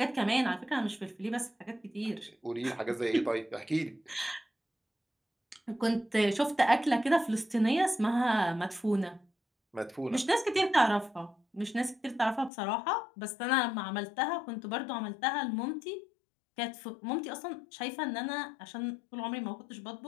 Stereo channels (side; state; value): right; drops out; at 12.5 s